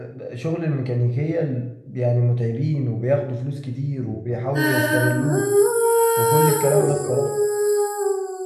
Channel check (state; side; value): identical; both; correlation 1.00